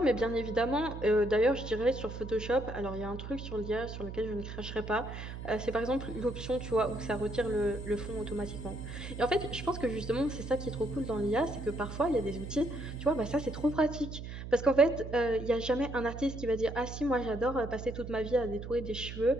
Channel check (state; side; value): noise; right; hum, 9 dB below the sound